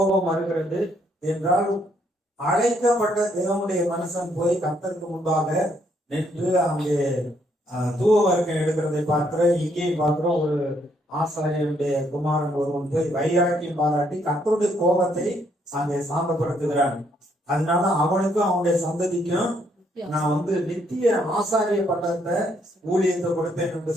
வருகிறது என்றால் அழைக்கப்பட்ட தேவனுடைய மனுஷன் போய் கர்த்தருக்கு முன்பாக நின்று அங்கே தூவ வர்க்கம் எடுக்கிறதை பார்க்கிறோம். இங்கேயும் பார்க்கிறோம், ஒரு ஆசாரியனுடைய குமாரன் ஒருவன் போய் வைராக்கியம் பாராட்டி கர்த்தருடைய கோபத்தை அங்கே சாந்தப்படுத்துகிறான். அதனால அவனுக்கும் அவனுடைய சந்ததிக்கும் நான் நித்திய ஆசாரிய பட்டத்தை ஊழியத்தை கொடுப்பேன் என்று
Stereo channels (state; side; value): normal; both; correlation 0.71